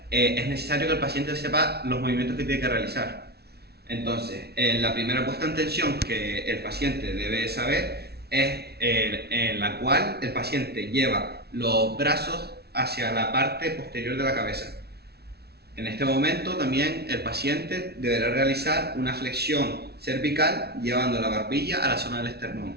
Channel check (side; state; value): left; late; 0.47 ms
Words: es necesario que el paciente sepa los movimientos que tiene que realizar. Entonces, la primera puesta en tensión que el paciente debe saber es en la cual el paciente lleva los brazos hacia la parte posterior de la cabeza. En este momento también el paciente deberá realizar una flexión cervical llevando la barbilla a la zona del esternón.